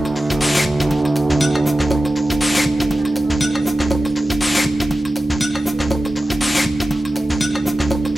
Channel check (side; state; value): both; normal; correlation 0.94